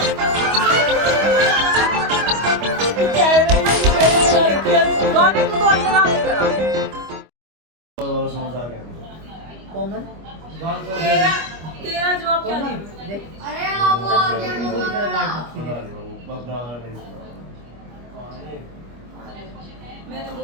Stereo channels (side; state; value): left; late; 25 ms